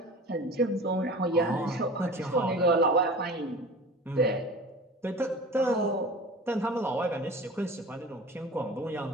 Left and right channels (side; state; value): both; normal; correlation 0.38